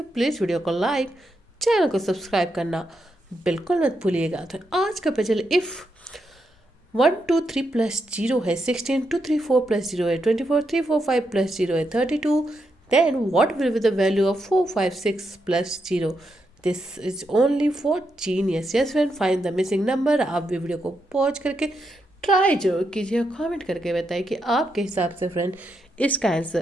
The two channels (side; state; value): both; normal; correlation 0.82